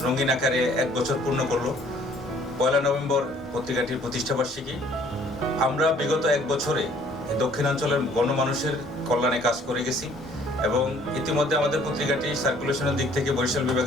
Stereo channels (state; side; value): normal; both; correlation 0.58